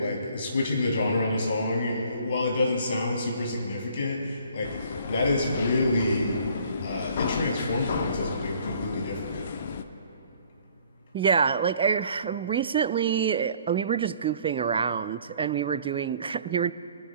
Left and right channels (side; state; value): both; inverted; correlation -0.57